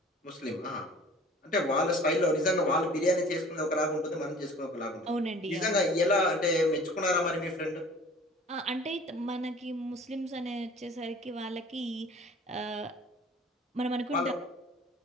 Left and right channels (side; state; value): both; normal; correlation 0.47